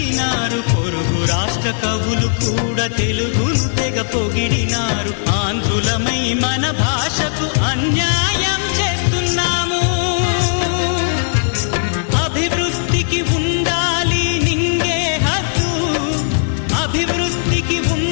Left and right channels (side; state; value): right; silent; digital silence